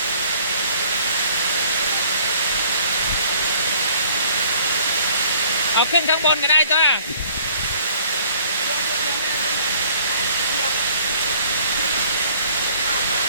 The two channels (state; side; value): inverted; both; correlation -0.57